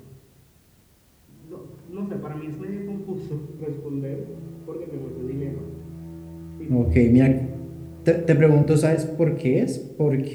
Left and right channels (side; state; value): both; identical; correlation 1.00